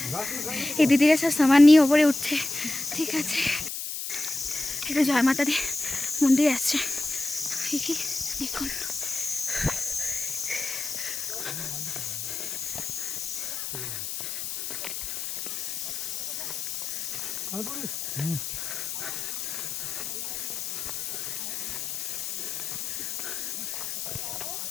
এই দিদিরা সব সামান নিয়ে ওপরে উঠছে, ঠিক আছে। এটা জয় মাতা দি মন্দির আসছে, দেখুন।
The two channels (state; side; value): noise; left; hiss, 4 dB below the sound